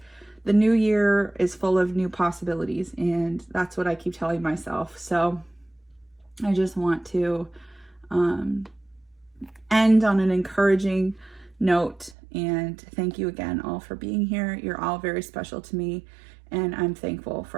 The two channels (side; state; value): left; drops out; at 12.2 s